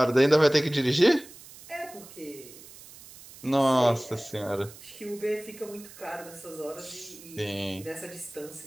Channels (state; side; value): noise; right; hiss, 19 dB below the sound